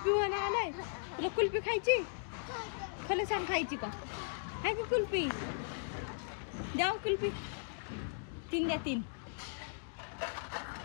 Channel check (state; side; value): silent; right; digital silence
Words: आलाय. तुला कुल्फी खायची? खरं सांग खायची का? आहे का कुल्फी? द्या कुल्फी. 3 द्या 3.